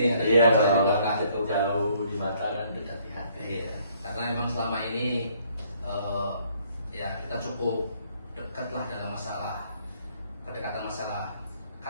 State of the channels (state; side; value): inverted; both; correlation -0.64